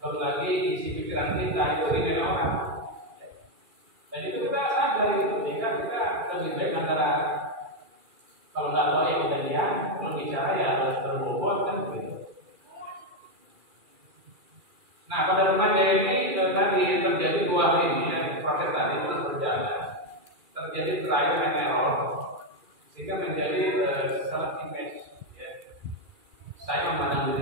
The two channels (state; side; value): late; left; 2.4 ms